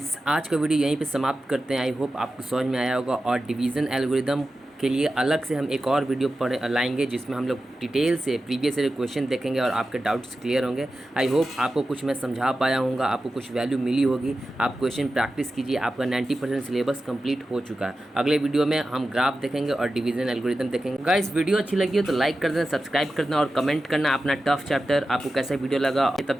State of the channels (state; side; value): normal; both; correlation 0.93